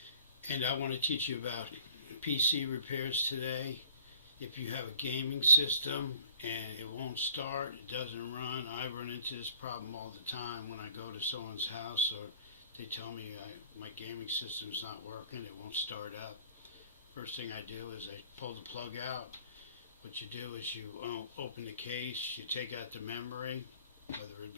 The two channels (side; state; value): both; inverted; correlation -0.51